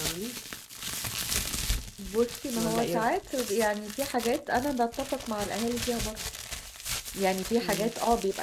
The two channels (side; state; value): both; identical; correlation 1.00